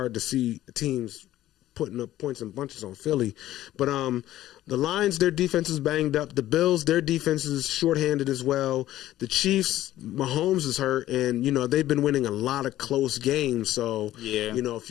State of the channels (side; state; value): right; quieter; 14.1 dB